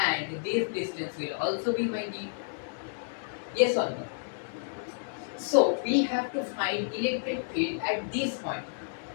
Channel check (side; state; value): right; silent; digital silence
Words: this distance will also be my d. Yes or no? So we have to find electric field at this point.